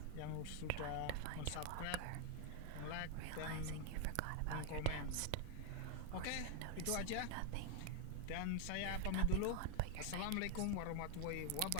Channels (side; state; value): both; different; correlation 0.00